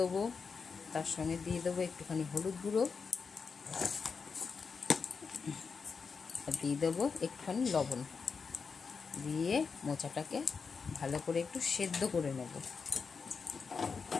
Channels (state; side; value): quieter; right; 5.3 dB